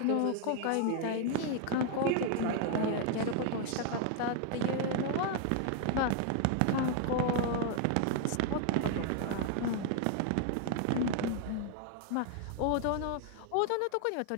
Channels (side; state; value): both; different; correlation 0.00